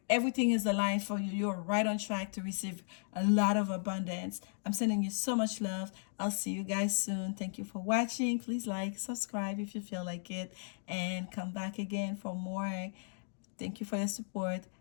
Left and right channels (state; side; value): silent; right; digital silence